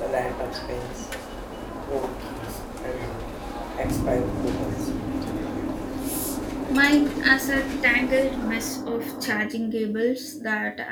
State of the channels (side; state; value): both; identical; correlation 1.00